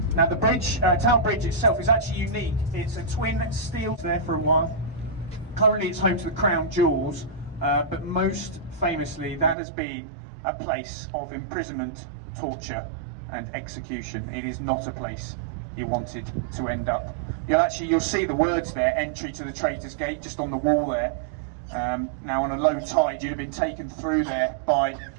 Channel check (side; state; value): left; drops out; at 9.6 s